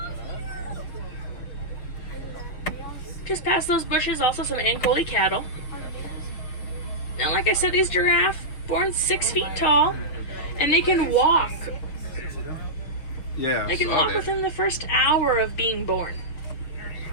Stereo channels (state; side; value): late; right; 6.3 ms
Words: Just past those bushes, also some Ankoli cattle. Now, like I said, these giraffes born 6 feet tall, and they can walk. Yeah, they can walk within the first hour of being born.